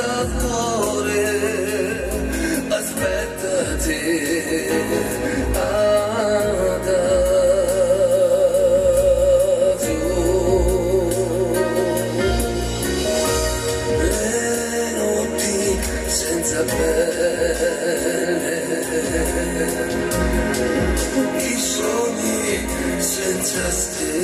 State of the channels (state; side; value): identical; both; correlation 1.00